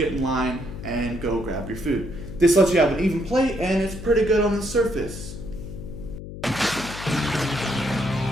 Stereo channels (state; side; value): noise; left; hum, 11 dB below the sound